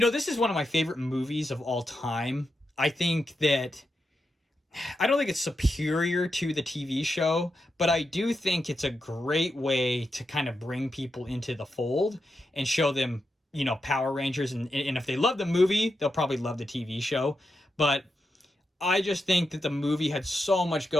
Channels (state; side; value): normal; both; correlation 0.87